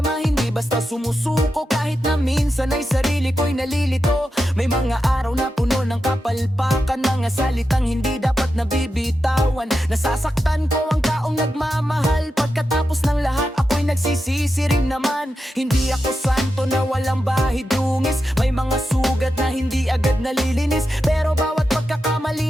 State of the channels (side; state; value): both; normal; correlation 0.89